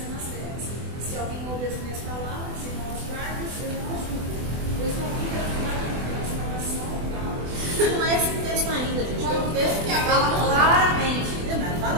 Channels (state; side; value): late; left; 24 ms